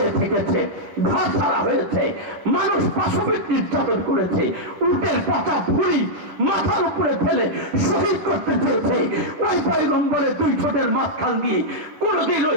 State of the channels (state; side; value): late; left; 11 ms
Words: থেকেছে, ঘর ছাড়া হয়েছে, মানুষ পাশবিক নির্যাতন করেছে, উটের পচা ভুঁড়ি মাথার উপরে ফেলে শহীদ করতে চেয়েছে। ওই পয়গম্বরের 2 ঠোঁটের মাঝখান দিয়ে কোনদিন ওই